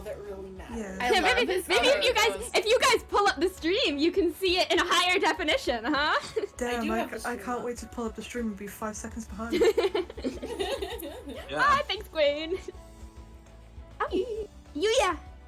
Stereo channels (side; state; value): both; identical; correlation 1.00